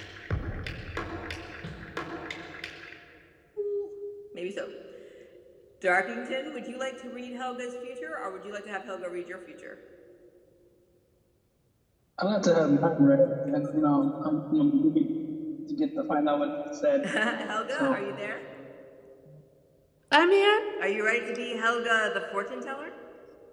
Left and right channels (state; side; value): identical; both; correlation 1.00